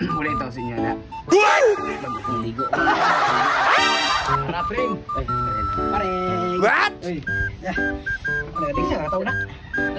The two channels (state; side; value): identical; both; correlation 1.00